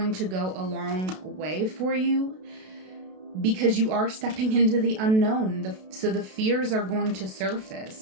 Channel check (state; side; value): late; left; 32 ms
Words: to go a long way for you because you are stepping into the unknown. So the fears are going to